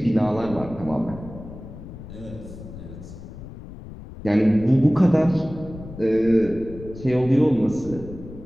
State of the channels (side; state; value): left; noise; rumble, 14 dB below the sound